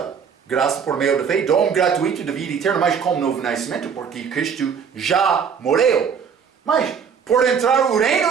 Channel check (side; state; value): left; quieter; 6.8 dB